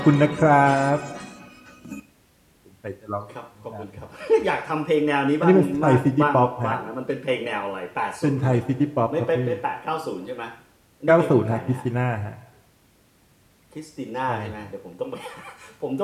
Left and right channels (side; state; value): both; identical; correlation 1.00